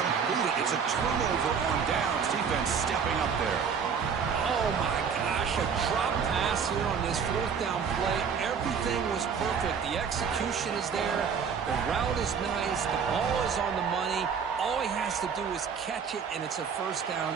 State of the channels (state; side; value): quieter; left; 6.5 dB